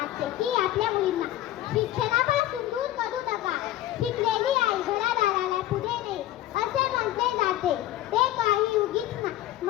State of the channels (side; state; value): right; quieter; 14.0 dB